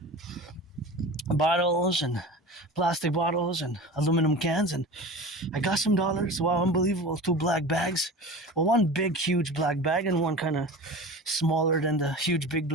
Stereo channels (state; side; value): normal; both; correlation 0.33